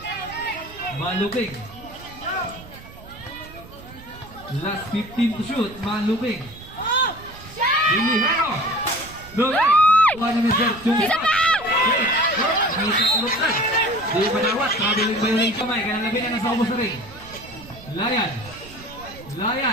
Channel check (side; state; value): right; noise; rumble, 18 dB below the sound